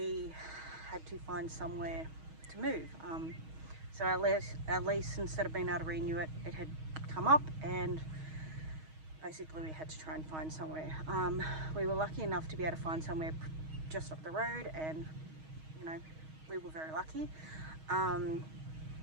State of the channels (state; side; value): late; left; 6.3 ms